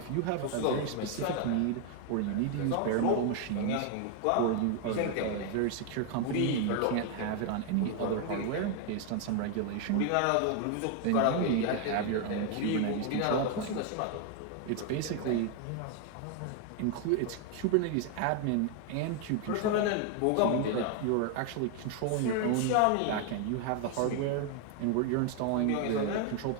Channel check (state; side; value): different; both; correlation 0.00